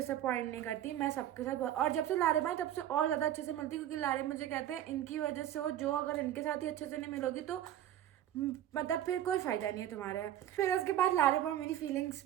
नहीं करती। मैं सबके साथ और जब से लारिब आए तब से और ज़्यादा अच्छे से मिलती, क्योंकि लारिब मुझे कहते हैं इनकी वजह से हो, जो अगर इनके साथ ही अच्छे से नहीं मिलोगी तो मतलब फिर कोई फ़ायदा नहीं है तुम्हारा। फिर उसके बाद लारिब और मेरी फीलिंग्स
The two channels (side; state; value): left; quieter; 11.8 dB